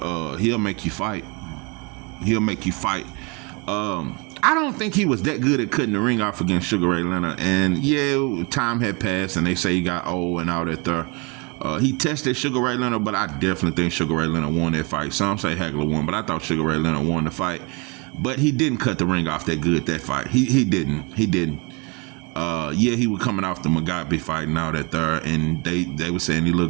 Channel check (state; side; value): quieter; left; 30.1 dB